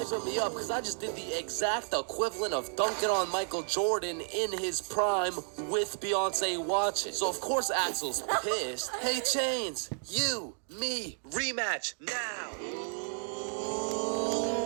me up because I just did the exact equivalent of dunking on Michael Jordan in his prime with Beyonce watching. So of course Axel's pissed. Hey Chains, you, me, rematch now.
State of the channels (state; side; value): silent; left; 56 dB below the other